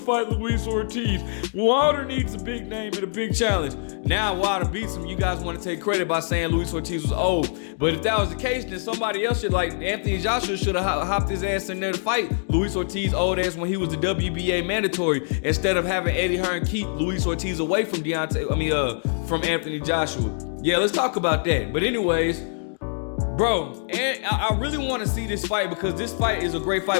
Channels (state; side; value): silent; right; digital silence